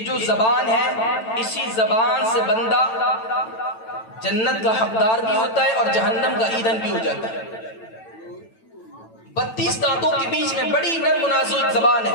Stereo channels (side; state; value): right; late; 9.0 ms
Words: جو زبان ہے، اسی زبان سے بندہ جنت کا حقدار بھی ہوتا ہے اور جہنم کا ایندھن بھی ہو جاتا ہے۔ 32 دانتوں کے بیچ میں بڑی نرم و نازک زبان ہے۔